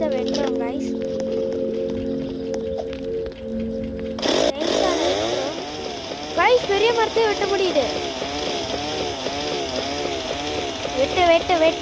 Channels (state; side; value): identical; both; correlation 1.00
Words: வெட்டுறோம் காய்ஸ். காய்ஸ், பெரிய மரத்தையே வெட்ட முடியுது. வெட்டு வெட்டு